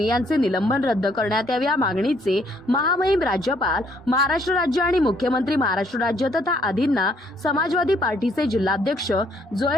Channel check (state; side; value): normal; both; correlation 0.67